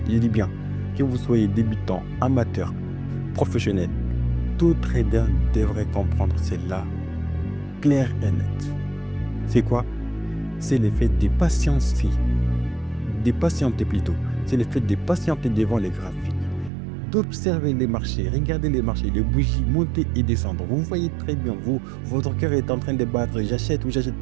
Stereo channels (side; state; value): left; drops out; at 16.7 s